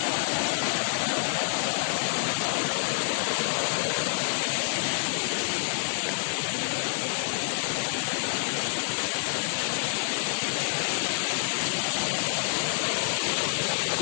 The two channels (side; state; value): right; silent; digital silence